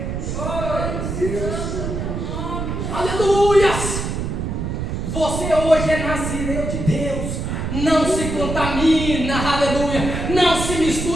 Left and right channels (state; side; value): noise; right; rumble, 3 dB below the sound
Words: Aleluias! Você hoje é nazireu de Deus. Não se contamina, aleluia. Não se